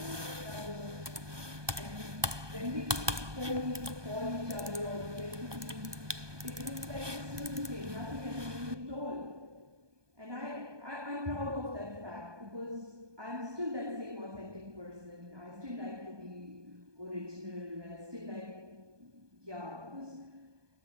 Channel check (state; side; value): late; left; 1.2 ms